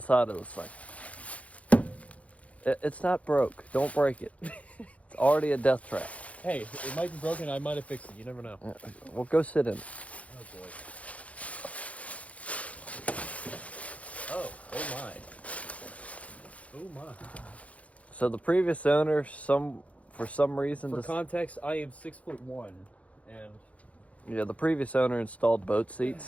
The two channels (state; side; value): late; right; 0.066 ms